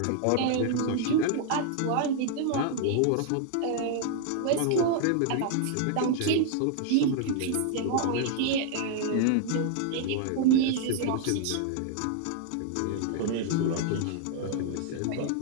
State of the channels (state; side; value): different; both; correlation 0.00